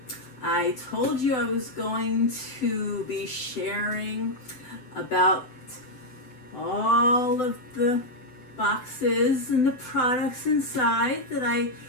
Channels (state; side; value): late; right; 7.9 ms